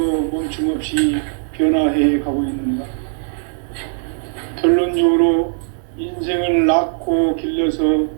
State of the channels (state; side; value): silent; left; 59 dB below the other